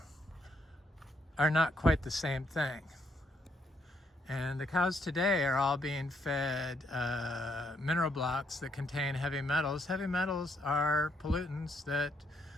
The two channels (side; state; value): both; normal; correlation 0.74